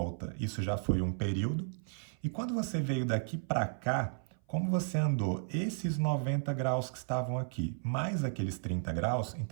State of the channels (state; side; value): silent; left; 55 dB below the other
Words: isso já foi um período, e quando você veio daqui para cá, como você andou esses 90 graus que estavam aqui, mais aqueles 30 graus,